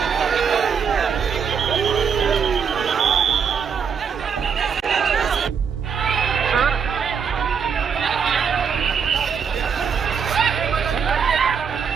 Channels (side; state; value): left; quieter; 6.6 dB